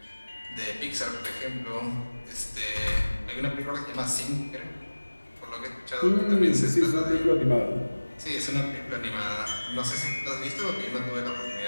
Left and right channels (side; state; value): both; inverted; correlation -1.00